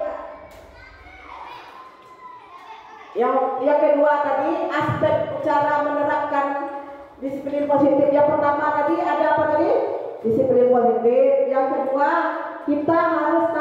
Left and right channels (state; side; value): identical; both; correlation 1.00